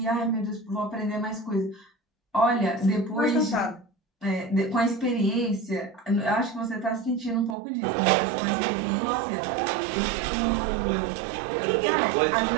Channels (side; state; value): left; drops out; at 7.6 s